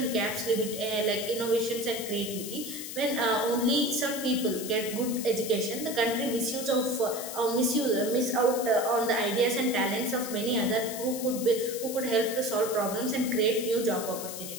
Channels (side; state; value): left; noise; hiss, 9 dB below the sound